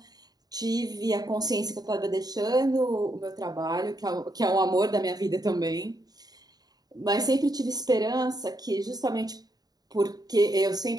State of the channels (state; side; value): late; left; 0.19 ms